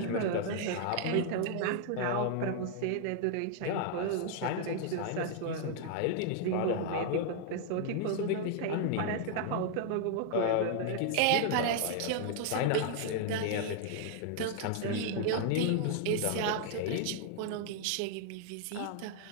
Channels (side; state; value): both; different; correlation 0.00